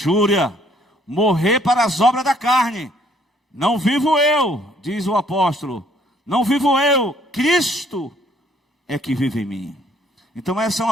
morrer para as obras da carne. Não vivo eu, diz o apóstolo, não vivo eu, Cristo é que vive em mim. Então essa é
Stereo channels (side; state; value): both; normal; correlation 0.63